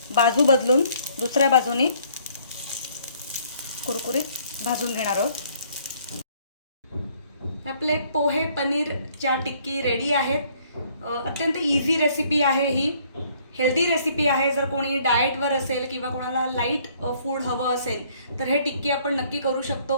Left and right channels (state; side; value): inverted; both; correlation -0.62